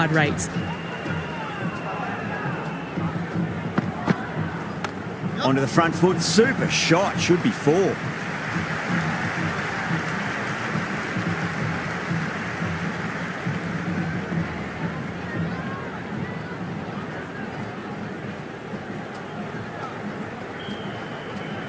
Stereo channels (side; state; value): both; identical; correlation 1.00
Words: rates. Onto the front foot, super shot, should be 4.